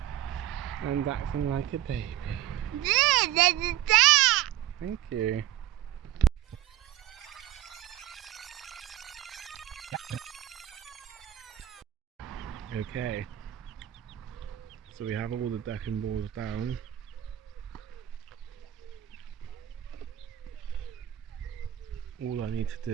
and acting like a baby. Thank you. Okay, So we have all the decking boards down. All I need to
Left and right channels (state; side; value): quieter; left; 12.9 dB